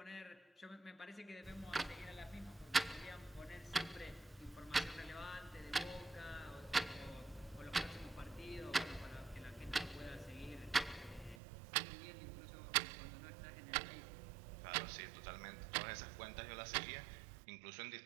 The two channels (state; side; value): drops out; left; at 11.4 s